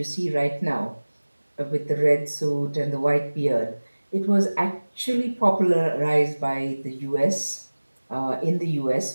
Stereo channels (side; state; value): both; inverted; correlation -1.00